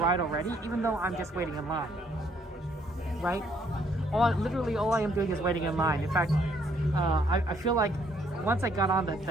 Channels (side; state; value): both; normal; correlation 0.67